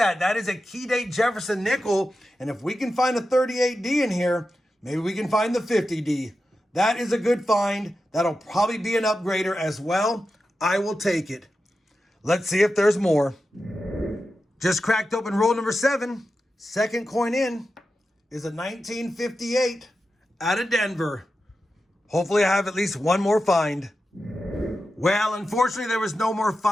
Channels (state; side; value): normal; both; correlation 0.91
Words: That is a Nic-A-Date Jefferson nickel. And if we can find a 38D in here, maybe we can find the 50D. That is a good find. That'll probably be an upgrader as well. I will take it. Let's see if there's more. Just cracked open roll number 7. Second coin in is a 1958 out of Denver. Hopefully I have at least one more find. Well, unfortunately, there was no more